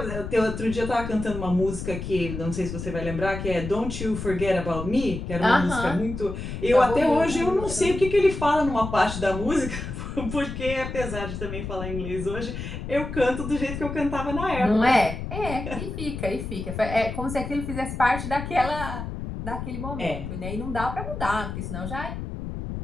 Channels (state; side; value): noise; left; rumble, 7 dB below the sound